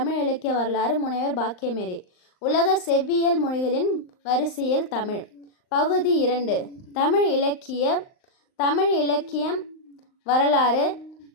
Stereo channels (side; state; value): right; late; 39 ms